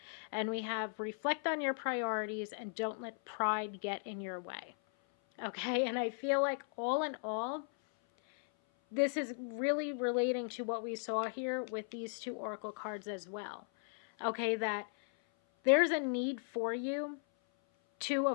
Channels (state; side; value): silent; right; 53 dB below the other